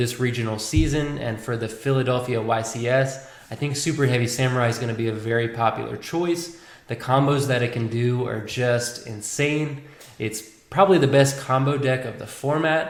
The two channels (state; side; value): identical; both; correlation 1.00